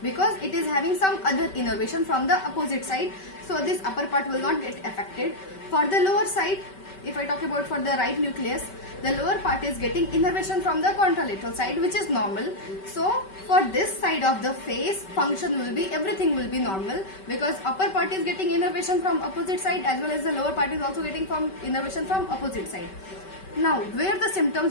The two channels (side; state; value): right; late; 5.2 ms